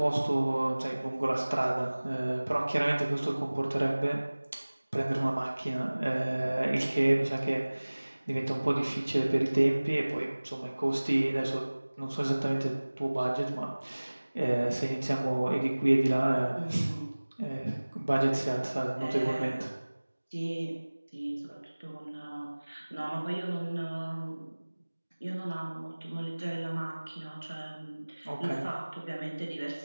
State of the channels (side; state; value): both; inverted; correlation -1.00